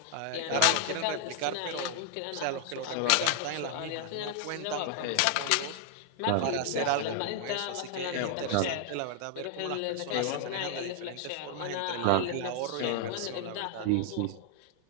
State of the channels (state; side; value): different; both; correlation 0.00